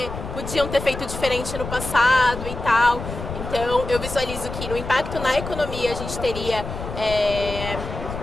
podiam ter feito diferente no passado e tal. Então, eu visualizo que no impacto na economia a gente teria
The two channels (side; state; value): left; noise; rumble, 8 dB below the sound